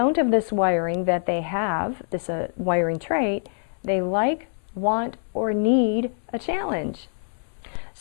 of this wiring that they have, this wiring trait, they like, want, or need a challenge.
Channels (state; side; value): silent; right; 62 dB below the other